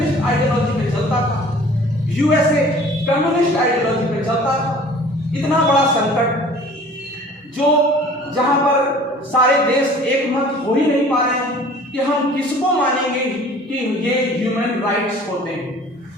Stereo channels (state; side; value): normal; both; correlation 0.48